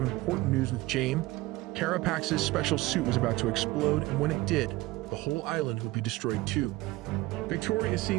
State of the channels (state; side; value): quieter; left; 19.4 dB